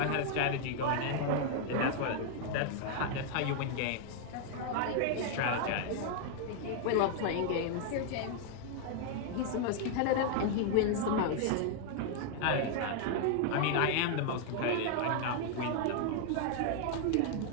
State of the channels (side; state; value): both; different; correlation 0.00